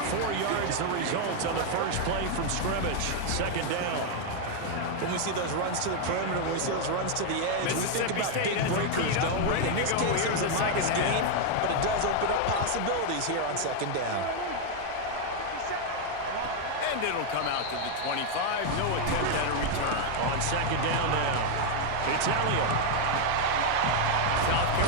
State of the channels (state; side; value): different; both; correlation 0.00